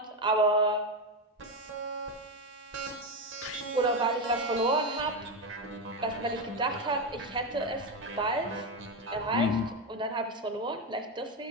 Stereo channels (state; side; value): normal; both; correlation 0.11